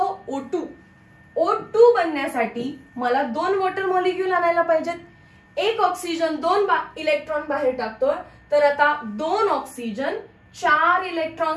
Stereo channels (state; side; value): identical; both; correlation 1.00